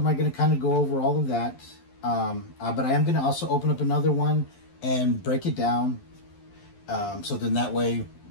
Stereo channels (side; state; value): right; late; 11 ms